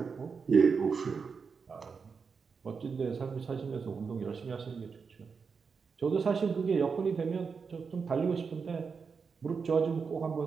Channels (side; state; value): left; quieter; 5.5 dB